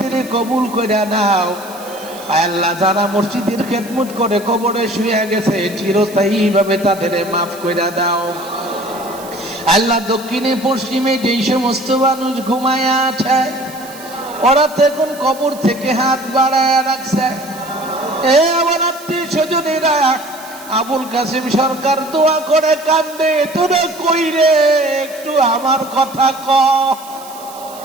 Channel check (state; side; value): noise; right; hiss, 18 dB below the sound